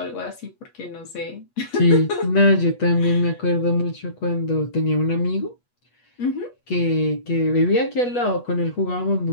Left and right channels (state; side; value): late; right; 8.2 ms